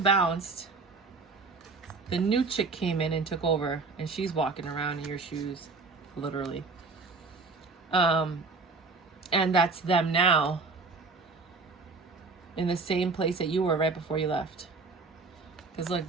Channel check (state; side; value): quieter; left; 4.0 dB